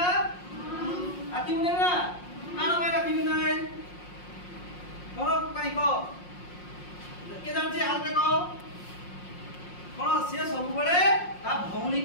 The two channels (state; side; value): late; right; 5.6 ms